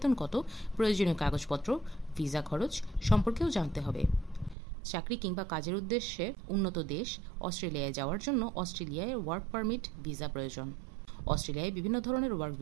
কত, প্রয়োজনীয় কাগজপত্র, ভিসা খরচ সম্পর্কেও জানতে হবে। চাকরি কিংবা কাজের উদ্দেশ্যে উন্নত দেশ অস্ট্রেলিয়ায় যাওয়ার জন্য অস্ট্রেলিয়ায় ওয়ার্ক পারমিট ভিসা প্রয়োজন। অস্ট্রেলিয়ায় বিভিন্ন ধরনের ওয়ার্ক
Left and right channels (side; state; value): left; drops out; at 4.5 s